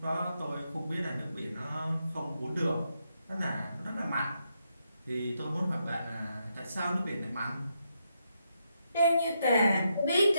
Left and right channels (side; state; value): both; inverted; correlation -0.81